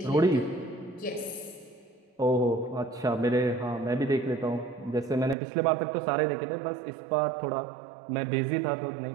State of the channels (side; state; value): left; drops out; at 5.4 s